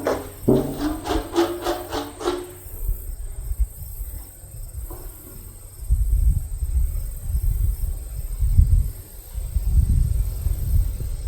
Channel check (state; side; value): identical; both; correlation 1.00